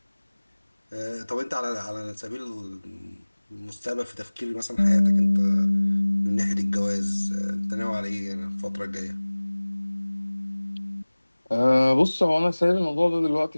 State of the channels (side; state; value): both; inverted; correlation -1.00